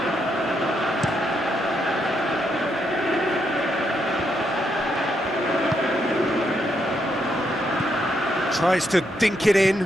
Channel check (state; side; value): normal; both; correlation 0.78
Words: Tries to dink it in,